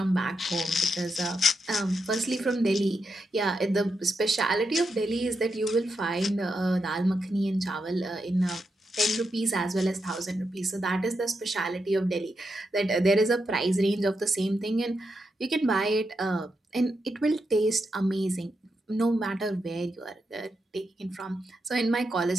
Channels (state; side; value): normal; both; correlation 0.85